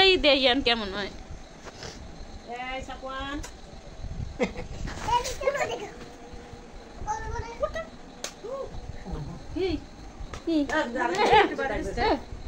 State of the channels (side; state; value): both; identical; correlation 1.00